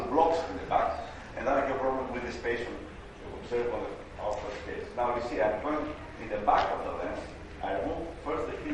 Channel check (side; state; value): both; identical; correlation 1.00